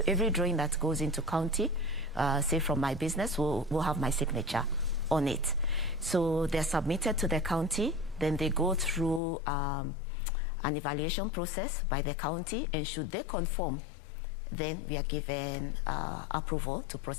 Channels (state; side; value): drops out; right; at 9.2 s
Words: every drawing that goes into county, say from my business, will have my signature on it. So they're submitted to the county, then they go through an evaluation process by the county, and should they conform, then we are given approval to